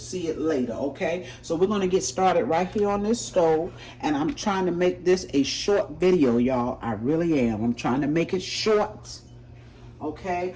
it later, okay? So we're going to get started right here on this stove, and I'm trying to make this a short video, y'all. I really am. I'm trying to make it short, okay?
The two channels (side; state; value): both; identical; correlation 1.00